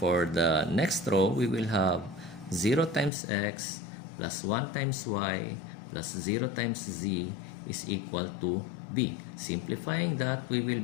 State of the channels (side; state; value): right; drops out; at 3.1 s